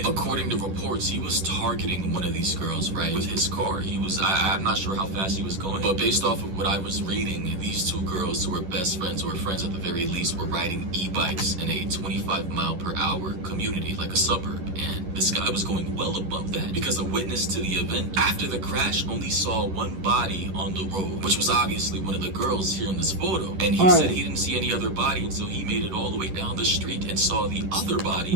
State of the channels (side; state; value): left; late; 11 ms